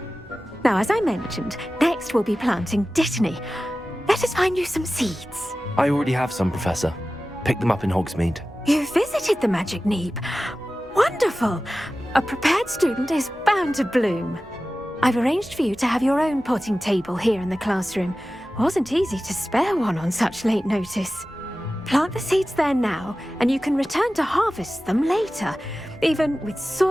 Now, as I mentioned, next we'll be planting dittany. Let us find you some seeds. I already have some, Professor. Picked them up in Hogsmeade. You visited the Magic Neep. Wonderful. A prepared student is bound to bloom. I've arranged for you to have your own potting table here in the classroom. Wasn't easy to spare one on such late notice. Plant the seeds there now, and you can return to harvest them later. Even with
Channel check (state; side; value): normal; both; correlation 0.95